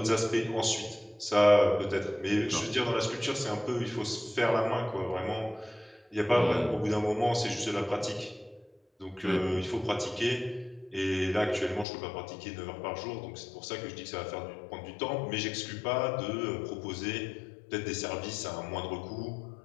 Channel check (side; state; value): right; drops out; at 11.9 s